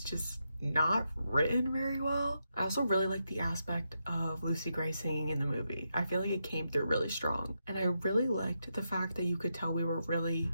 not written very well. I also really like the aspect of Lucy Gray singing in the movie. I feel like it came through really strong. And I really liked the fact that you could tell we were really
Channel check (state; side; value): inverted; both; correlation -0.84